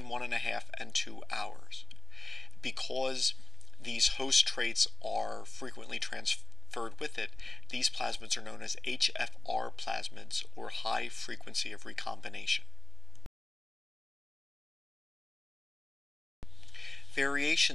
1.5 and 2 hours. Because these host traits are frequently transferred with it, these plasmids are known as Hfr plasmids, or high frequency of recombination.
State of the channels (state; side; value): quieter; right; 3.0 dB